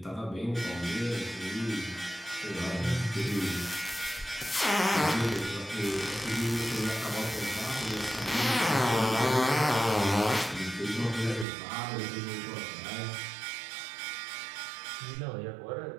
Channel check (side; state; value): left; drops out; at 11.5 s